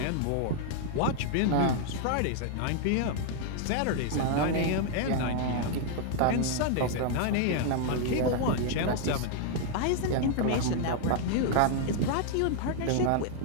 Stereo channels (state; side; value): different; both; correlation 0.00